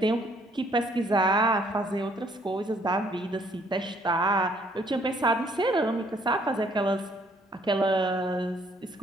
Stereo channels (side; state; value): both; normal; correlation 0.64